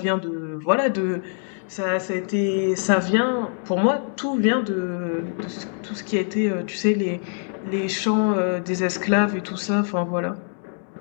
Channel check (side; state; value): right; silent; 63 dB below the other